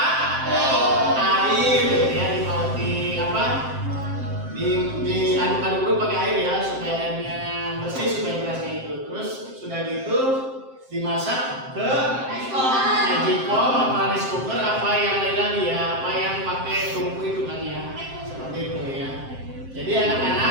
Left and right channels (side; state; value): left; late; 7.6 ms